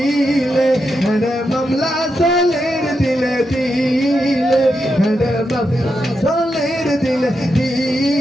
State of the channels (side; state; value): both; normal; correlation 0.85